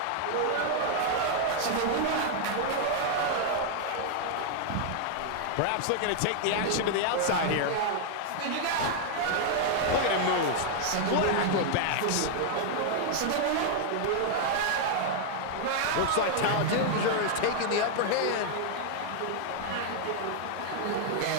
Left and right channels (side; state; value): both; different; correlation 0.00